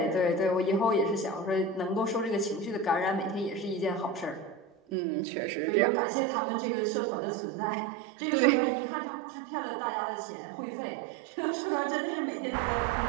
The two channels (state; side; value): drops out; left; at 5.0 s